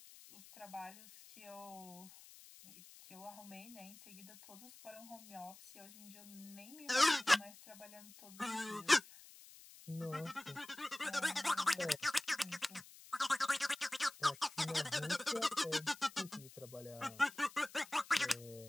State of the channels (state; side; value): noise; left; hiss, 19 dB below the sound